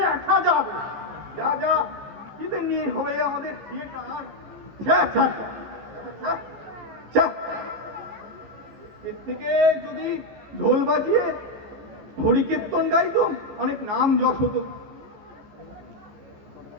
যাবে। যা কিদের নিয়ে হবে আমাদের থিয়েটার? ছ্যা, ছ্যা, ছ্যা, ছ্যা। এর থেকে যদি ঢোল বাজিয়ে হরিকীর্তন গাইতো, অনেক নাম যশ হতো।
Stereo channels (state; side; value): late; left; 14 ms